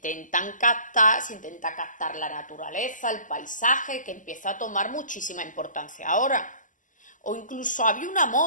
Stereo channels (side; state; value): right; late; 0.37 ms